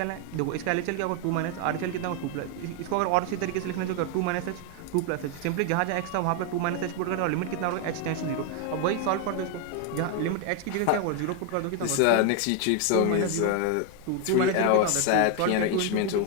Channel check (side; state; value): both; different; correlation 0.01